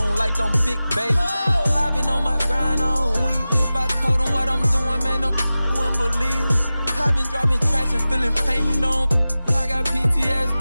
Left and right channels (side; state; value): both; inverted; correlation -0.96